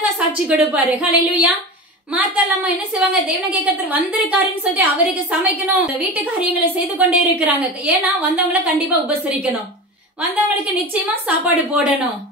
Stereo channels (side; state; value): both; normal; correlation 0.28